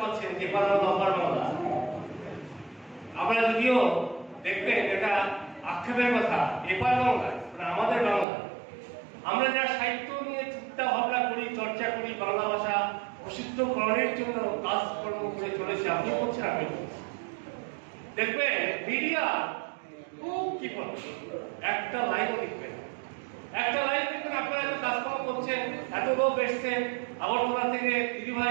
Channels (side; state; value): left; drops out; at 8.2 s